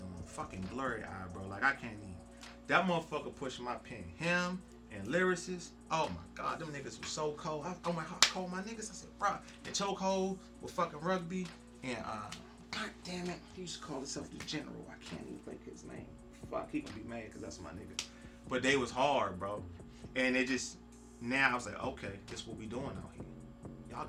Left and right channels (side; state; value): both; identical; correlation 1.00